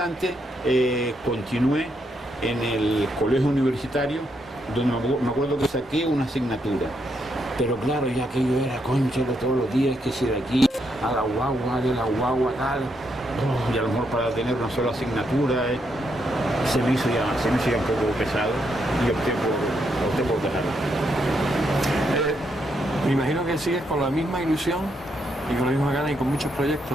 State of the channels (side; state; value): both; normal; correlation 0.78